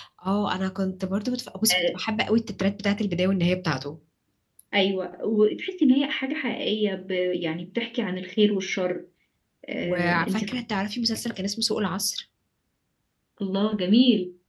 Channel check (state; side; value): identical; both; correlation 1.00